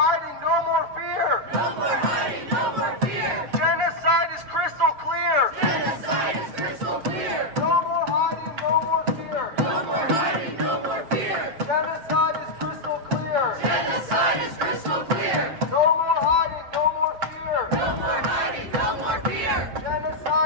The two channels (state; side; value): late; left; 7.3 ms